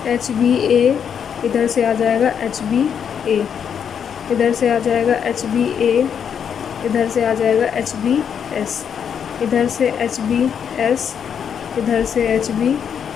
HBA इधर से आ जाएगा, HBA इधर से आ जाएगा, HBA इधर से आ जाएगा, HBS इधर से, HBS इधर से, HBA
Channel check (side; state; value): right; quieter; 7.8 dB